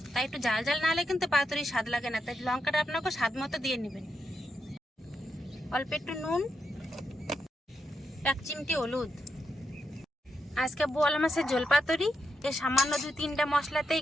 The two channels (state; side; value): normal; both; correlation 0.83